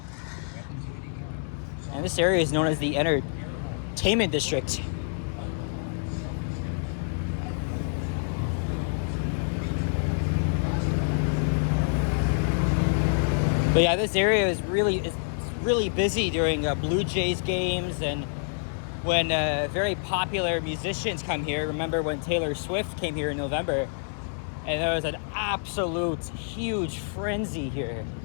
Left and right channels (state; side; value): silent; right; digital silence